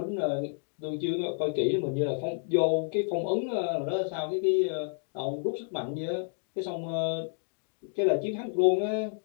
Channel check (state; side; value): silent; right; digital silence